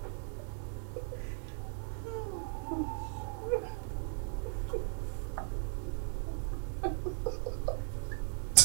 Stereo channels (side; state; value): left; silent; 53 dB below the other